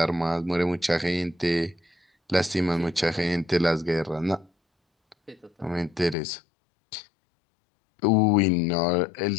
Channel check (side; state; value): right; drops out; at 6.2 s